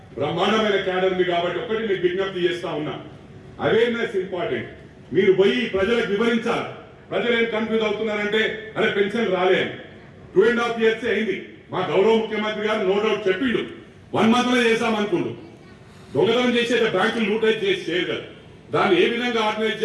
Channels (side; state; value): both; identical; correlation 1.00